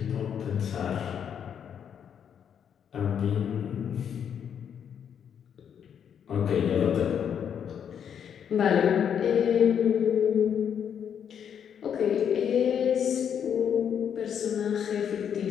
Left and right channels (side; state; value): right; quieter; 8.3 dB